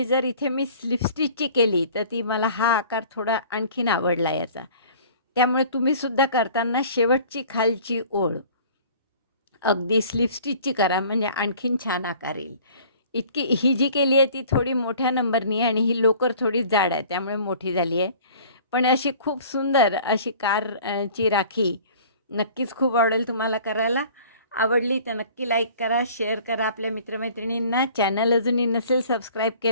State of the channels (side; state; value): both; inverted; correlation -0.48